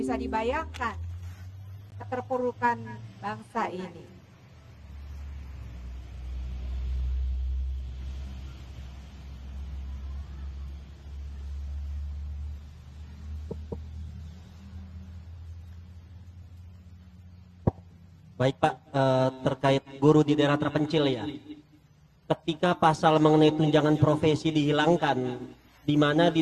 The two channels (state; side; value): identical; both; correlation 1.00